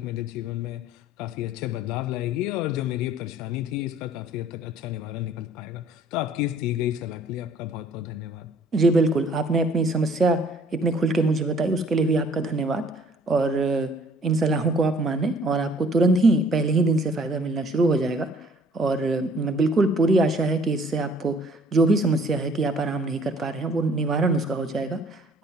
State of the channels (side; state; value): both; normal; correlation 0.57